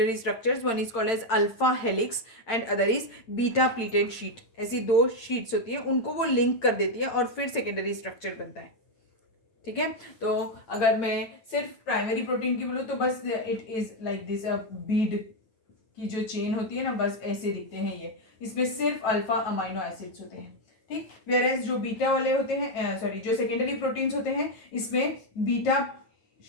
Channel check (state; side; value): late; right; 8.8 ms